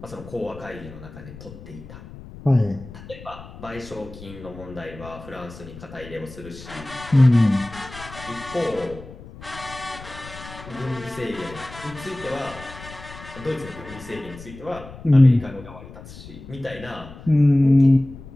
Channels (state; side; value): noise; left; rumble, 16 dB below the sound